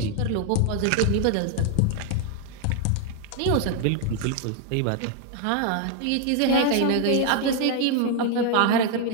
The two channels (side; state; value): both; different; correlation 0.00